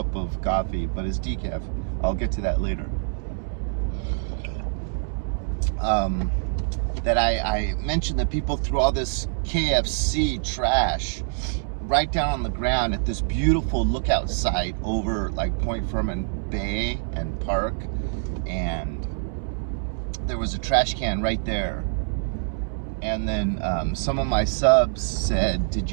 of coffee, but it's decaf. I'll get to that later. That I mentioned that people threw all this KFC trash right down on the ground at this beautiful lookout site over like Point Fermin Bay and Park, and there was a trash can right there. And then some of my subs said, "Did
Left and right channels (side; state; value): left; silent; 62 dB below the other